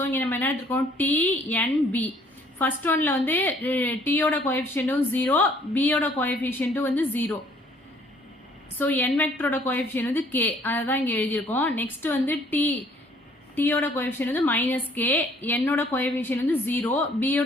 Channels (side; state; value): both; normal; correlation 0.60